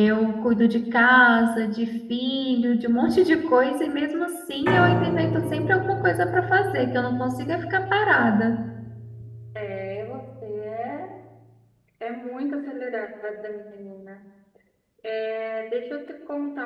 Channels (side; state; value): both; identical; correlation 1.00